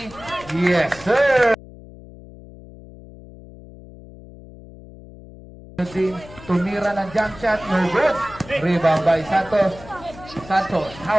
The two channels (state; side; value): noise; left; hum, 18 dB below the sound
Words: Yes, sir! Tumira ng jump shot, no good. Rebound by Santos. Santos,